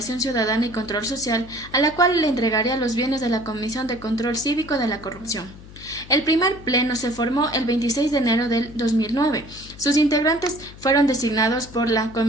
Ciudadana y Control Social, a la cual le entregaría los bienes de la Comisión de Control Cívico de la Corrupción. El primer pleno se formó el 26 de enero del 2009. Sus integrantes fueron designados por la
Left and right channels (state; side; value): noise; left; hum, 18 dB below the sound